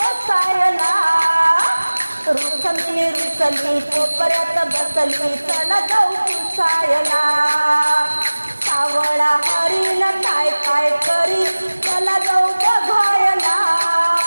बसायला रुसली रुसली कोपऱ्यात बसली चला जाऊ पुसायला सावळा हरीण काय काय करी चला जाऊ बघायला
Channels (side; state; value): both; inverted; correlation -1.00